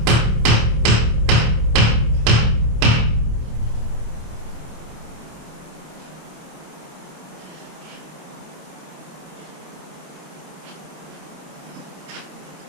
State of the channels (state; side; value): late; left; 26 ms